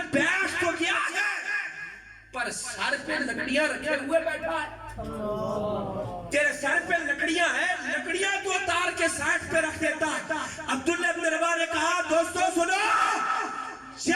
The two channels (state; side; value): identical; both; correlation 1.00